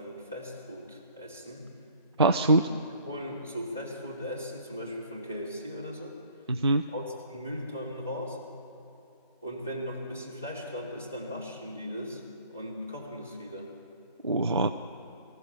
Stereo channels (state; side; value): inverted; both; correlation -0.54